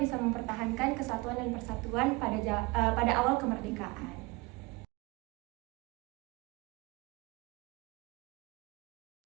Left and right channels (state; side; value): quieter; left; 24.4 dB